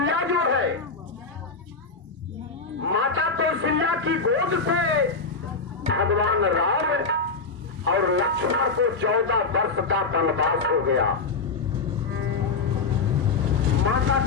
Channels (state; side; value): quieter; right; 4.4 dB